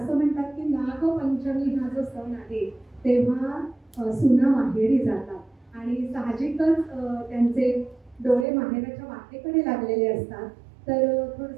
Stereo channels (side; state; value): left; drops out; at 8.5 s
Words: म्हणतात की नागपंचमी हा जो सण आहे तेव्हा सुना माहेरी जातात आणि साहजिकच त्यांचे डोळे माहेराच्या वाटेकडे लागलेले असतात. तर